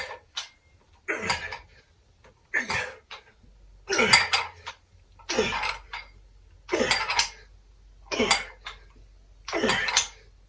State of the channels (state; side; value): identical; both; correlation 1.00